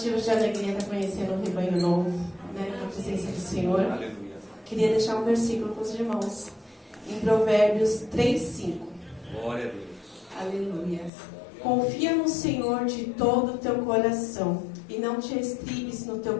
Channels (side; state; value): right; drops out; at 11.1 s